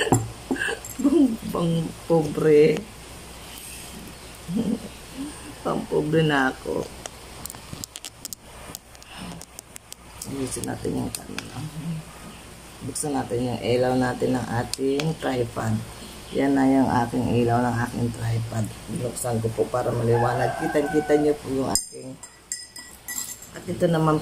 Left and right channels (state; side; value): identical; both; correlation 1.00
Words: Pang pobre. Pang pobre na ako. Buksan natin yung camera. Buksan natin yung ilaw natin ng ating tripod. Yan na yung aking ilaw ng aking tripod. Buksan ko po para maliwanag. Kita-kita nyo po yung aking. At ito